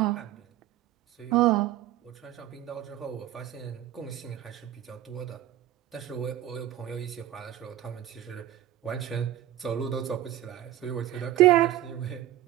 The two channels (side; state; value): left; quieter; 12.9 dB